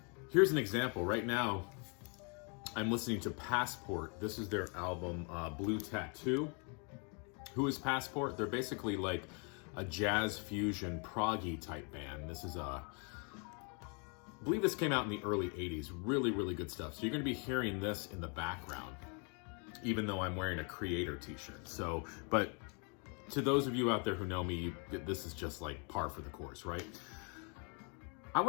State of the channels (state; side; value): quieter; right; 36.5 dB